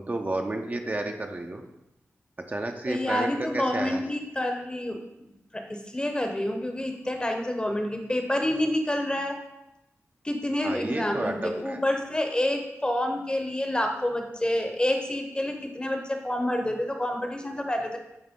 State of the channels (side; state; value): both; normal; correlation 0.92